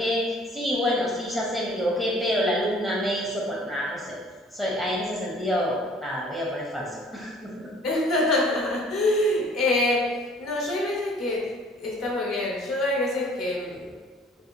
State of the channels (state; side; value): normal; both; correlation 0.53